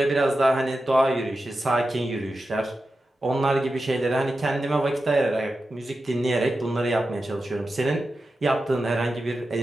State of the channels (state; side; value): normal; both; correlation 0.91